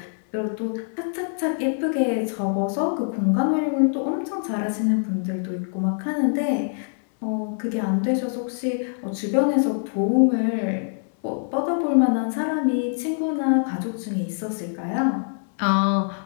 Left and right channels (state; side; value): silent; right; 62 dB below the other